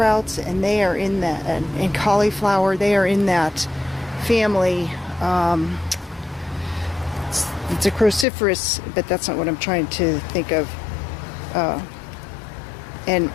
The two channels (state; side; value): drops out; right; at 8.2 s